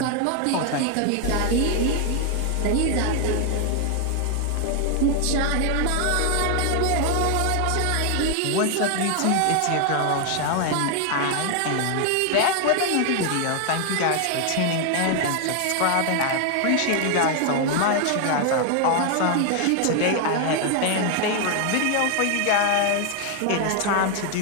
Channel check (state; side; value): different; both; correlation 0.00